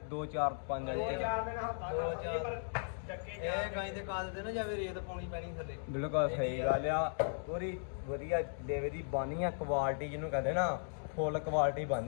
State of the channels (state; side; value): silent; right; digital silence